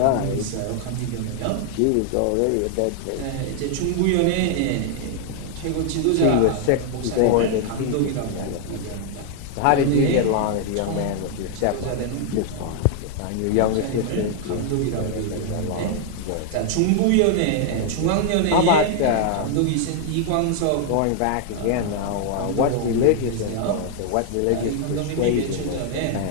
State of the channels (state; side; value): different; both; correlation 0.00